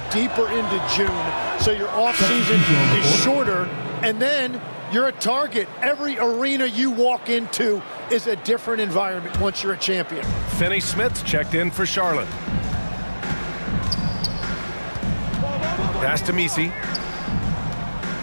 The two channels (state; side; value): inverted; both; correlation -1.00